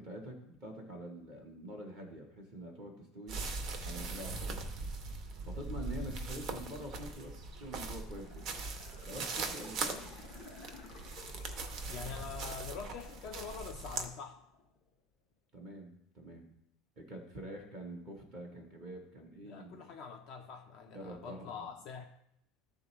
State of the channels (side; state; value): both; normal; correlation 0.44